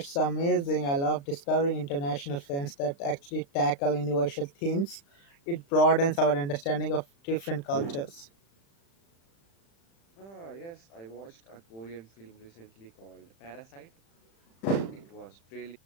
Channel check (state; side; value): late; right; 36 ms